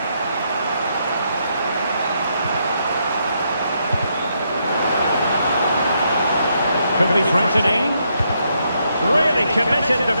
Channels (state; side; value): inverted; both; correlation -0.77